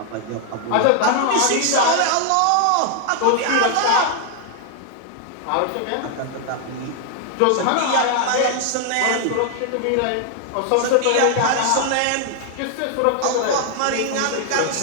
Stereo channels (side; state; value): both; different; correlation 0.00